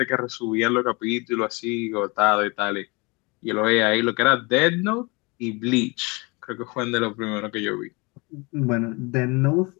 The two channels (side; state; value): right; quieter; 27.6 dB